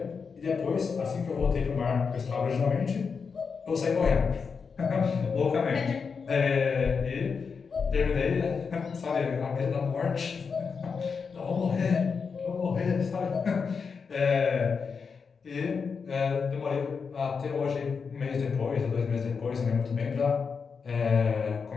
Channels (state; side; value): quieter; right; 5.5 dB